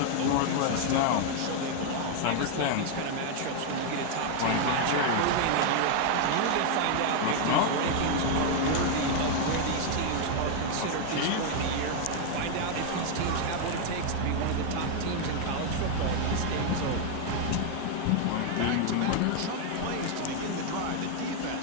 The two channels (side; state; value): both; different; correlation 0.00